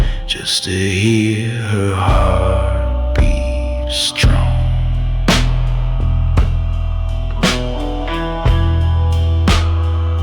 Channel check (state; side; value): identical; both; correlation 1.00